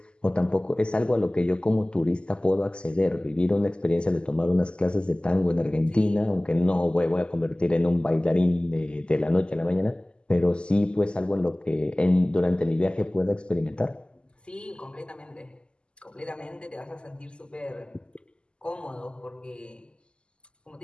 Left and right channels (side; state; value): right; late; 0.051 ms